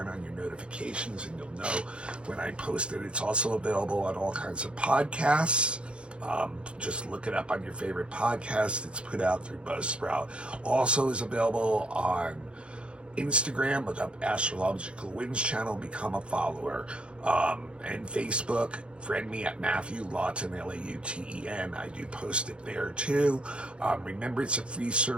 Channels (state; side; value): late; left; 0.057 ms